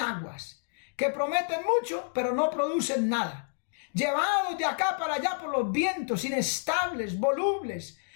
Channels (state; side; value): silent; right; digital silence